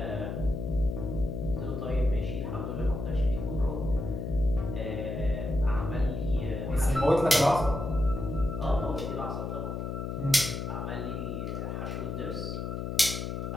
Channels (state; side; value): noise; left; hum, 4 dB below the sound